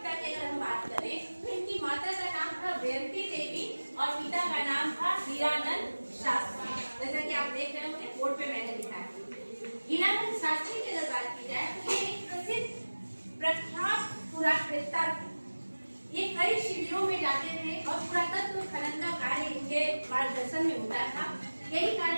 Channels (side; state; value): both; inverted; correlation -1.00